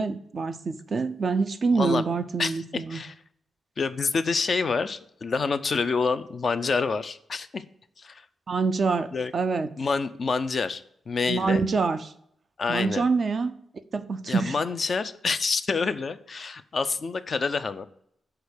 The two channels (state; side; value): normal; both; correlation 0.83